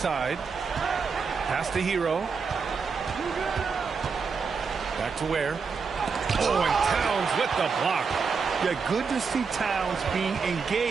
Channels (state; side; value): quieter; left; 5.4 dB